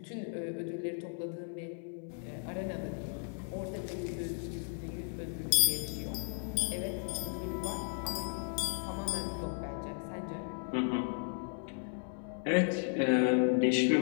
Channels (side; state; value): right; silent; 54 dB below the other